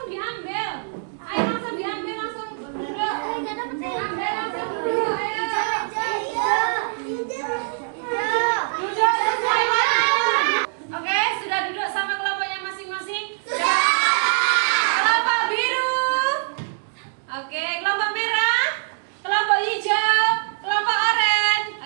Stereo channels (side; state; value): left; silent; digital silence